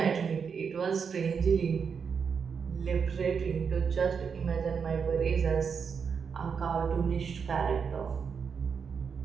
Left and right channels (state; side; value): quieter; left; 6.3 dB